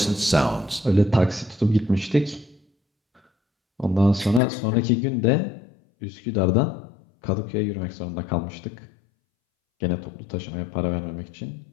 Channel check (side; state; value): right; drops out; at 4.4 s